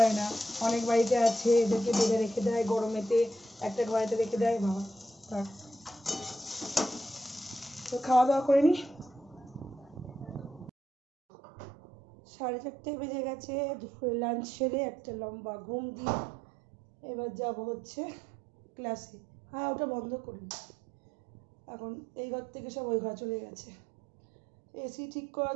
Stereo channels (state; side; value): drops out; left; at 10.7 s